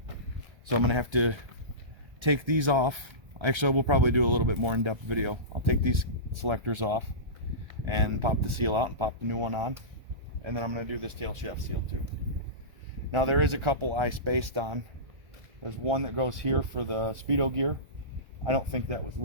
So I'm going to have to take these off. Actually, we'll probably do a little bit more in-depth video. I'll take these selectors off and pop the seal out and pop the new one on. And then I'm going to do this tail shaft seal too. Now there is a couple I spaced on. There's one that goes here for the speedo gear. I don't think that was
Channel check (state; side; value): late; left; 1.3 ms